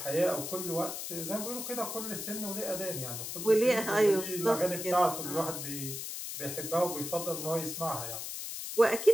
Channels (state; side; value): noise; left; hiss, 6 dB below the sound